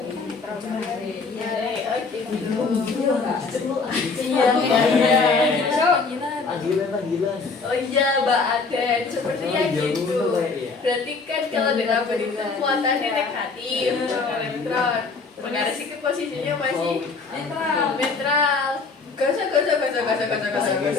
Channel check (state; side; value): quieter; right; 4.4 dB